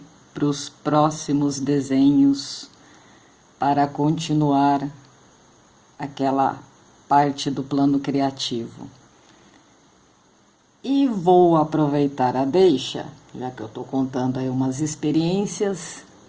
para os próximos desenhos para continuar aquela parte do plano criativo. E vou aproveitar a deixa, já que eu estou contando aí umas experiências,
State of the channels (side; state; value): both; identical; correlation 1.00